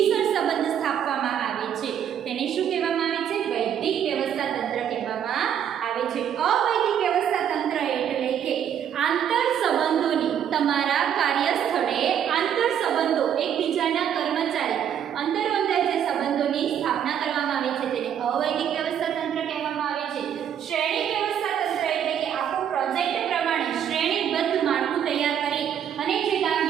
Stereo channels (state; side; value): quieter; left; 9.2 dB